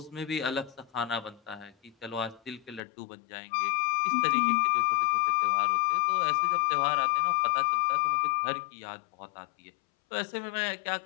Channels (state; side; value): drops out; right; at 2.8 s